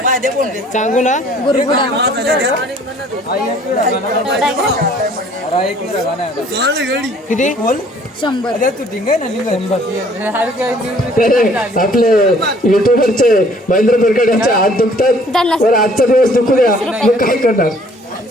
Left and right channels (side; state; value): both; normal; correlation 0.56